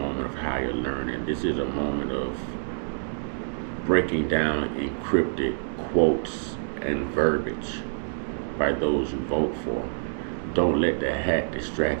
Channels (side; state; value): left; silent; digital silence